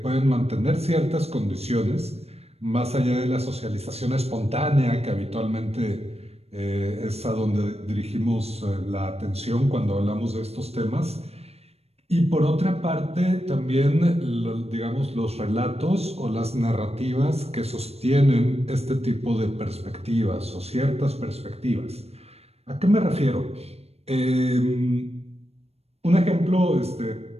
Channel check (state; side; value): late; left; 0.30 ms